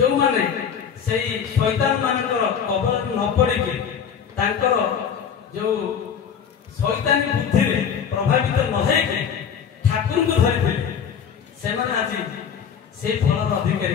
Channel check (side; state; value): right; quieter; 7.5 dB